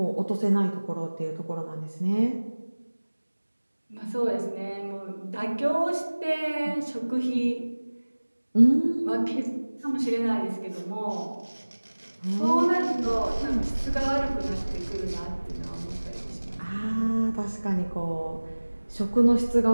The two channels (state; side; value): inverted; both; correlation -1.00